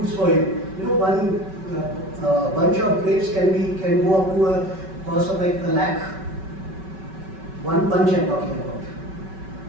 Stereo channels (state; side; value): late; left; 5.3 ms